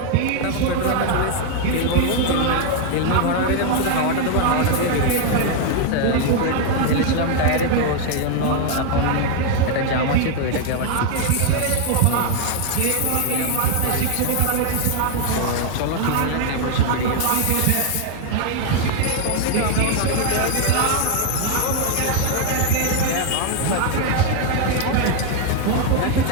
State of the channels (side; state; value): both; different; correlation 0.01